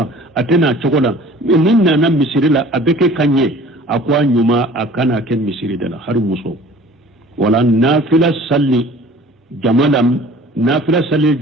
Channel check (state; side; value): normal; both; correlation 0.47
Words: atena chokola nin na misiri la abeke kanye akwa nyuma akana ken misiri dala har muso wala nafila salli jamala